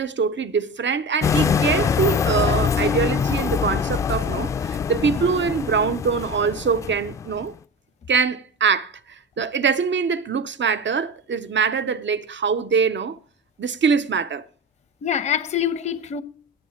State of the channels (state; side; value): normal; both; correlation 0.28